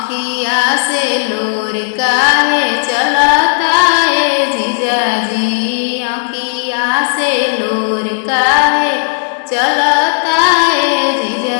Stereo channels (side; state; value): right; silent; digital silence